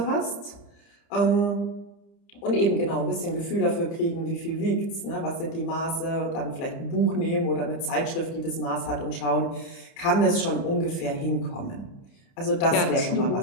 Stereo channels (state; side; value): late; right; 30 ms